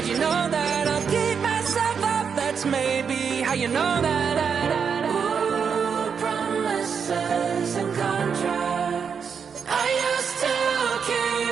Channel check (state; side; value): quieter; left; 6.5 dB